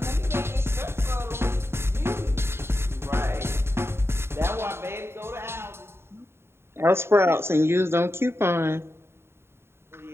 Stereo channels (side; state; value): left; late; 0.12 ms